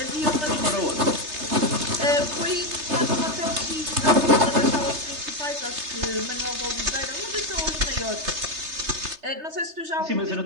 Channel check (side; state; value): left; late; 3.3 ms